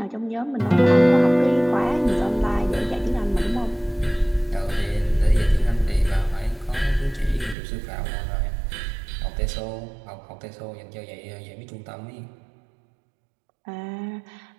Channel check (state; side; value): drops out; left; at 7.6 s